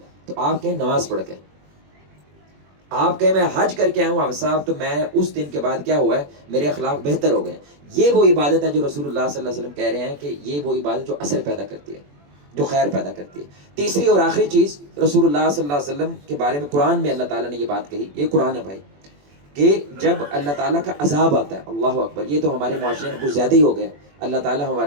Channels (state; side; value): late; left; 21 ms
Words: تو آپ کہیں نماز پڑھ کے، آپ کہیں میں حج کر کے آیا ہوں صاحب، تو میں اس دن کے بعد کیا ہوا ہے، میرے اخلاق بہتر ہو گئے۔ یہ وہ عبادت ہے جو رسول اللہ صلی اللہ علیہ وسلم کہہ رہے ہیں کہ یہ وہ عبادت جو اثر پیدا کرتی ہے، جو خیر پیدا کرتی ہے۔ تیسری اور آخری چیز رسول اللہ صلی اللہ علیہ وسلم کے بارے میں قرآن میں اللہ تعالیٰ نے یہ بات کہی، یہ قرآن ہے بھائی، کہ جب اللہ تعالیٰ کا عذاب آتا ہے، اللہ اکبر، یہ تو ہمارے معاشرے میں کچھ زیادہ ہی ہو گیا۔ اللہ تعالیٰ